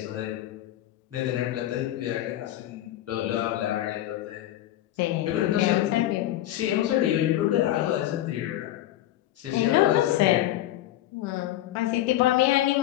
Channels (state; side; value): quieter; right; 14.0 dB